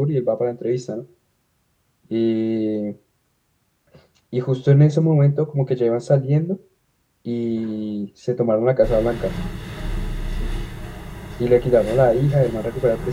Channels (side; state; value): both; identical; correlation 1.00